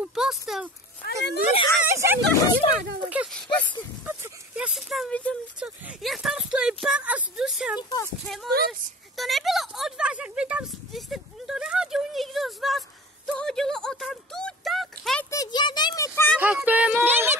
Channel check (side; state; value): both; normal; correlation 0.39